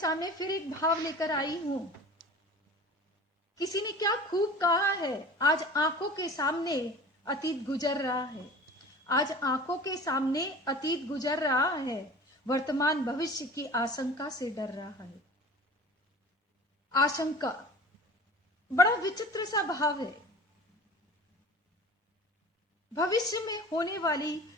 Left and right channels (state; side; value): normal; both; correlation 0.40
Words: फिर एक भाव लेकर आई हूं। किसी ने क्या खूब कहा है, आज आंखों के सामने अतीत गुजर रहा है। आज आंखों के सामने अतीत गुजर रहा है, वर्तमान भविष्य की आशंका से डर रहा है। आशंका बड़ा विचित्र सा भाव है। भविष्य में होने वाली